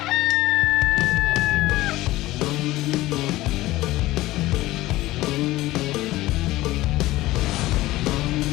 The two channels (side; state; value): right; quieter; 17.6 dB